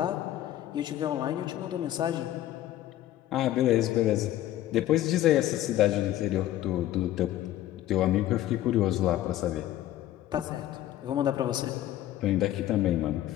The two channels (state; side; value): quieter; right; 13.5 dB